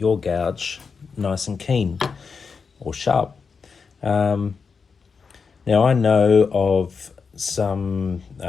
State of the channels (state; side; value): quieter; right; 5.4 dB